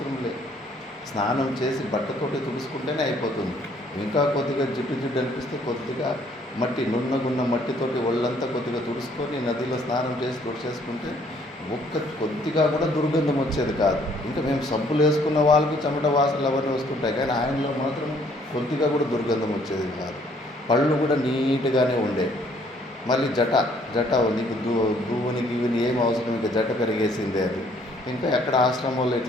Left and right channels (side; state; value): both; normal; correlation 0.63